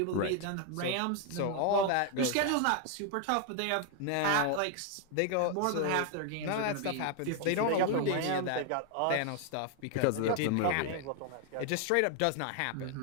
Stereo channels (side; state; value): both; different; correlation 0.00